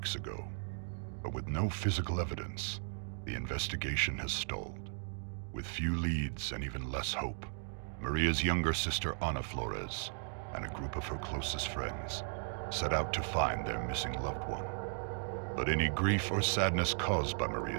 ago, but with no physical evidence, the investigation has stalled. With few leads and even less hope, Maria's younger sister Ana Flores and a group of her closest friends set out to find their missing loved one. But any grief or sadness caused by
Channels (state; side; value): silent; left; 53 dB below the other